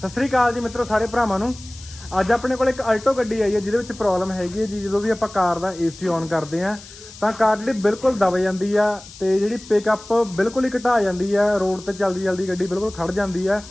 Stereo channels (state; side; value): noise; left; hiss, 18 dB below the sound